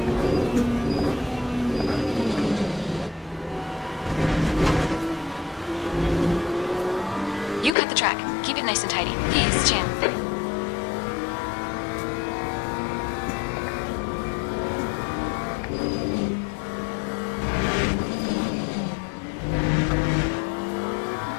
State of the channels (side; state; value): right; drops out; at 7.8 s